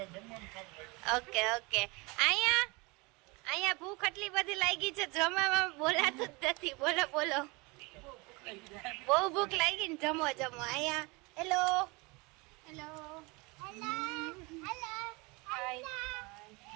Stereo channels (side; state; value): left; quieter; 26.6 dB